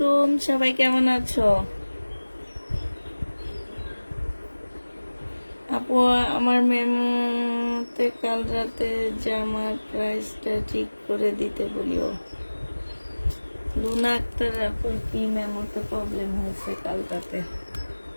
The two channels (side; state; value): both; inverted; correlation -1.00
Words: সবাই কেমন আছো? আপু আমার মেমোতে কাল রাতে জামার প্রাইসটা ঠিক করে দিতে বলিও। লুনা আক্তার আপুর কি মেমোতে প্রবলেম হয়েছে কাল রাতে?